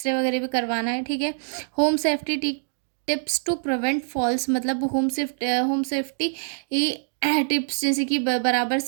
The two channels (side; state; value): left; silent; digital silence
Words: वगैरह भी करवाना है। ठीक है, home safety tips to prevent falls, मतलब होम सेफ्टी टिप्स, जैसे कि बराबर